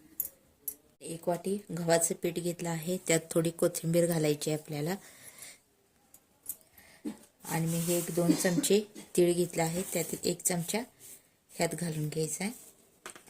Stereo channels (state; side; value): identical; both; correlation 1.00